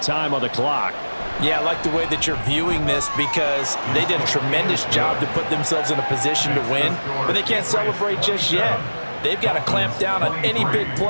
time on the clock. Yeah, I like the way that you're viewing this because they did a tremendous job to put themselves in a position to win, but they can't celebrate just yet. They've got to clamp down on any big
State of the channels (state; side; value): inverted; both; correlation -1.00